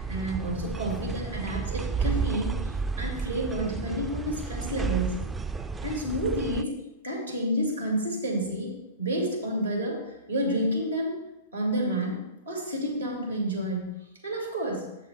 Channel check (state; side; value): normal; both; correlation -0.17